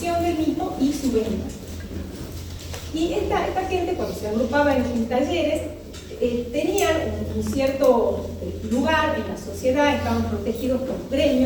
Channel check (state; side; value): identical; both; correlation 1.00